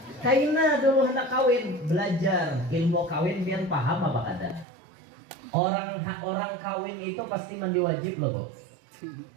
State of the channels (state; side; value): drops out; left; at 4.7 s